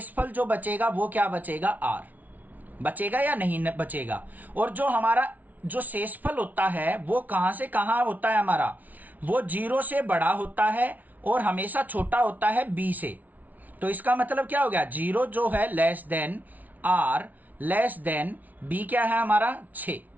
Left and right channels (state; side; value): late; left; 0.076 ms